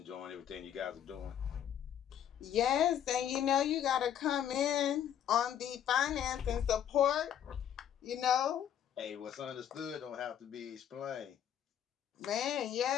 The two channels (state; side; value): quieter; right; 9.8 dB